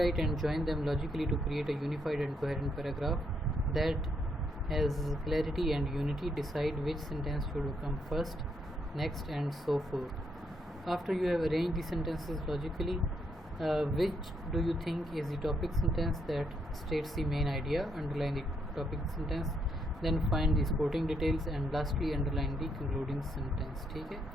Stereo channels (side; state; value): both; normal; correlation 0.75